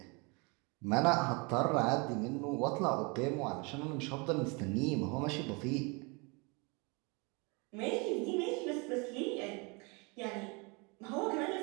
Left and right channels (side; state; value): left; quieter; 29.9 dB